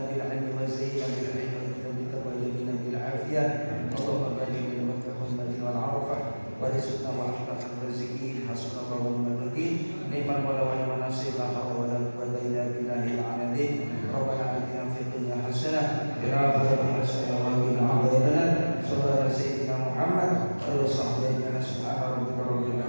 بالعلم وزينا بالعلم وبك وجبنا بالعافية اللهم بارك بين مكة والمدينة والعرفة ورزقنا وأحسن الرازقين حسبنا الله ونعم الوكيل نعم المولى ونعم النصير لا حول ولا قوة إلا بالله العلي ربنا آتنا في الدنيا حسنة وفي الآخرة حسنة وقنا عذاب النار صلى الله على سيدنا محمد وعلى آله وصحبه أجمعين سبحان ربك رب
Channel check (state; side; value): inverted; both; correlation -1.00